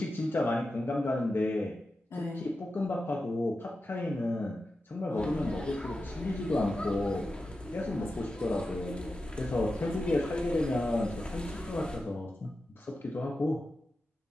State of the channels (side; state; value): both; normal; correlation 0.91